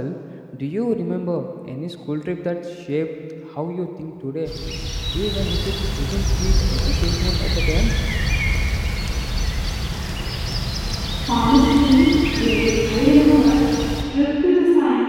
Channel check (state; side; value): identical; both; correlation 1.00